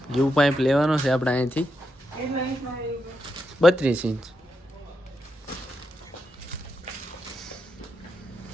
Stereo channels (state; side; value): normal; both; correlation 0.84